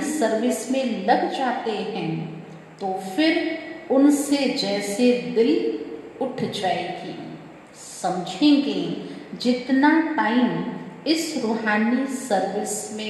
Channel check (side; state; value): both; identical; correlation 1.00